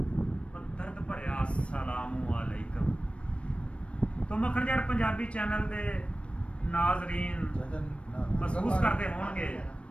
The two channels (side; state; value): right; late; 0.060 ms